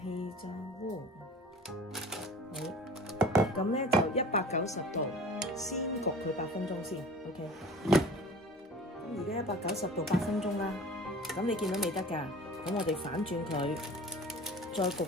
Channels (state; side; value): normal; both; correlation 0.41